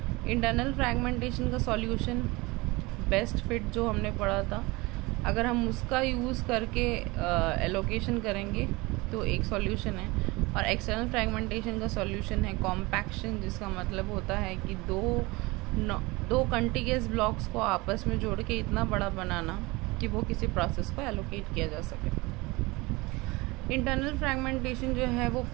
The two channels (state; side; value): quieter; left; 23.3 dB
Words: इंटरनल फ्रैगमेंटेशन का सॉल्यूशन बेस्ट फिट जो हमने पढ़ा था, अगर हम उसका यूज़ करके एलोकेशन करेंगे तो एक सॉल्यूशन है। और एक्सटर्नल फ्रैगमेंटेशन का सॉल्यूशन है कॉम्पैक्शन, जिसका मतलब होता है कि दो कंटिग्यूअस ब्लॉक्स को आपस में जोड़ के इतना बड़ा बनाना कि वो किसी प्रोसेस को एलोकेट किया जा सके। इंटरनल फ्रैगमेंटेशन जो है वो